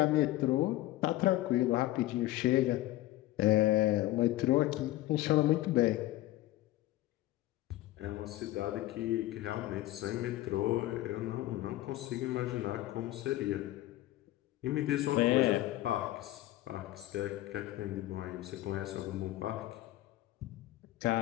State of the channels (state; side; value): quieter; right; 16.3 dB